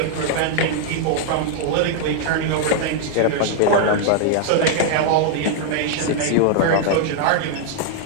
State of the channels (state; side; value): different; both; correlation -0.01